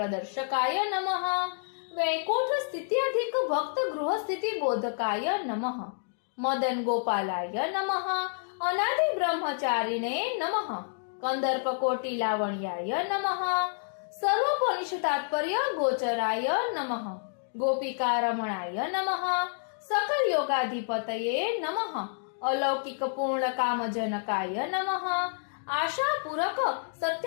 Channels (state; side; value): silent; right; digital silence